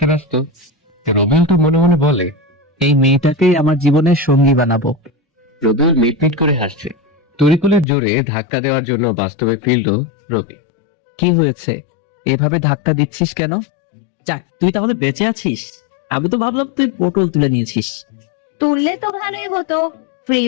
ব্যস্ত। রবিউল তো মনে মনে বলে, এই মেয়েটাকেই আমার জীবনের সঙ্গী বানাবো। রবিউল মিটমিট করে হাসছে। তরিকুলের জোরে ধাক্কা দেওয়ার জন্য বাস্তবে ফিরল রবি। কি হয়েছে, এভাবে ধাক্কা দিচ্ছিস কেন? যাক, তুই তাহলে বেঁচে আছিস। আমি তো ভাবলাম তুই পটল তুলে নিয়েছিস। তুললে তো ভালোই হতো, ফ্রি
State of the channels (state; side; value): drops out; right; at 7.9 s